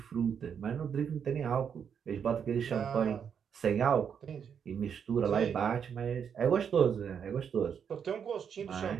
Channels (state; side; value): quieter; left; 7.5 dB